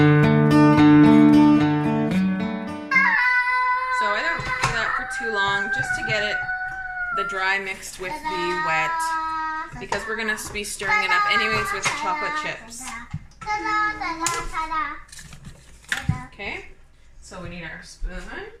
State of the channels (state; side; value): identical; both; correlation 1.00